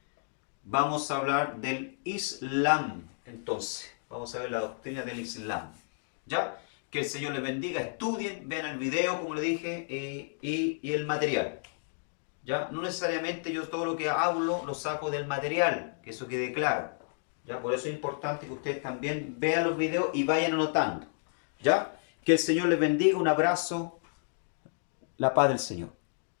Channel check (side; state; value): right; silent; digital silence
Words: Vamos a hablar del Islam. Entonces, vamos a ver la doctrina del Islam. ¿Ya? Que el Señor les bendiga. Estudien, vean el video, como le dije, y el material. ¿Ya? No necesariamente yo todo lo que hablo lo saco del material, que eso quede claro. ¿Ya? Por eso es importante que ustedes también vean los videos y vayan anotando. ¿Ya? Que el Señor les bendiga. Un abrazo. La paz del Señor.